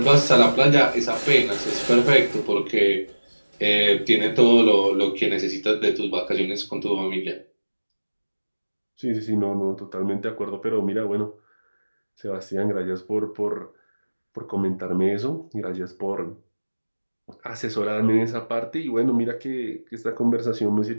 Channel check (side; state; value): both; inverted; correlation -1.00